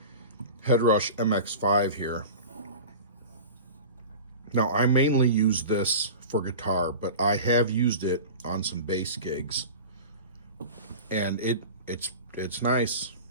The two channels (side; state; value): both; inverted; correlation -0.34